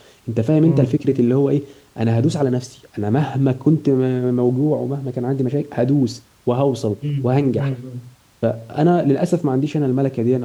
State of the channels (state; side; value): identical; both; correlation 1.00